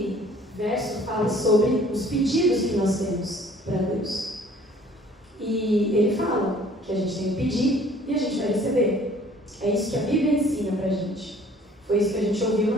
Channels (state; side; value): normal; both; correlation 0.54